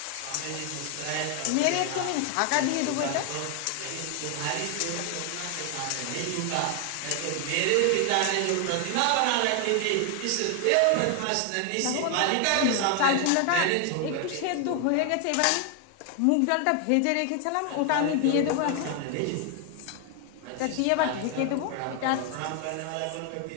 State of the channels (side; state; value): both; different; correlation 0.00